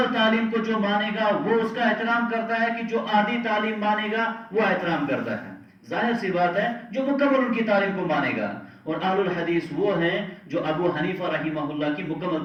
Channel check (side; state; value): both; identical; correlation 1.00